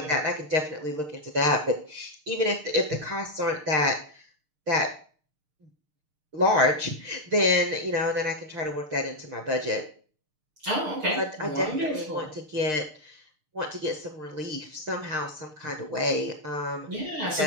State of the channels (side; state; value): left; late; 6.6 ms